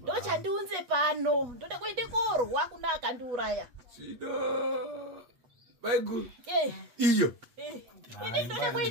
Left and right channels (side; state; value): left; late; 8.8 ms